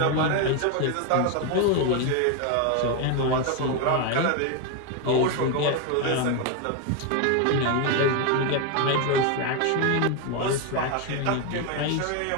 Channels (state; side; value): different; both; correlation 0.02